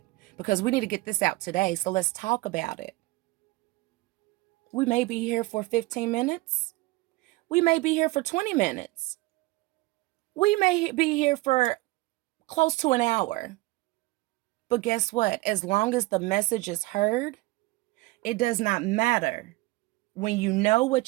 because we need to get this out today. So let's talk about it. We may be here for 15 minutes. We may be here for 20 minutes. We may be here for close to an hour. But guess what? As long as the message is heard, it does not matter. When you know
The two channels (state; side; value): quieter; left; 21.1 dB